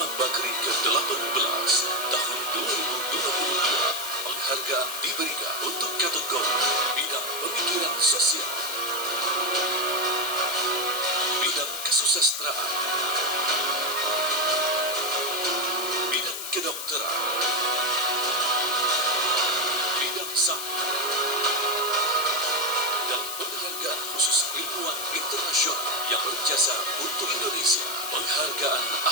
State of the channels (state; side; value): noise; left; hiss, 6 dB below the sound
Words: Bakri ke-18 tahun 2022. Penghargaan diberikan untuk kategori bidang pemikiran sosial. kesusastraan, bidang kedokteran, bidang saham, dan penghargaan khusus ilmuwan internasional yang berjasa untuk Indonesia. Penghargaan